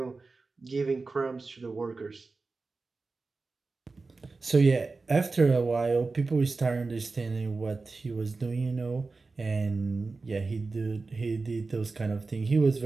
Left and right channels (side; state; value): left; quieter; 3.9 dB